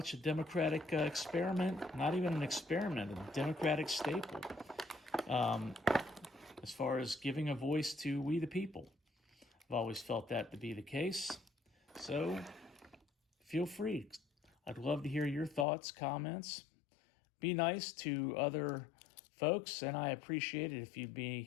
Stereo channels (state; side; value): drops out; right; at 15.7 s